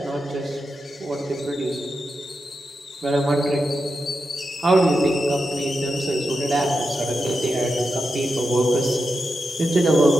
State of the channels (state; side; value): normal; both; correlation 0.88